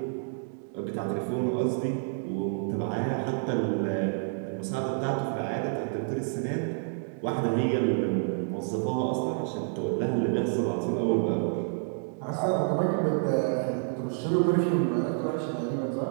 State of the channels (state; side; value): silent; left; digital silence